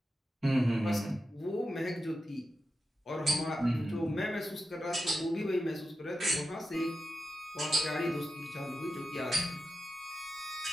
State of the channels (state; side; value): normal; both; correlation 0.90